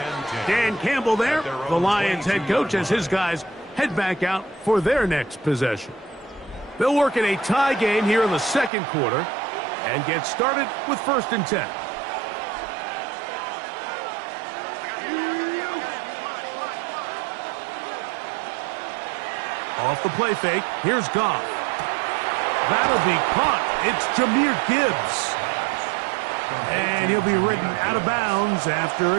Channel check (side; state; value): left; drops out; at 8.7 s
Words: Dan Campbell there, the Lions head coach, as his guys head back out for their next possession. They'll work in a tie game here in the 2nd quarter and get started with 1st and 10. Off the play fake, here's Goff. That'll be caught. It's Jahmyr Gibbs. And he'll be ridden out of bounds after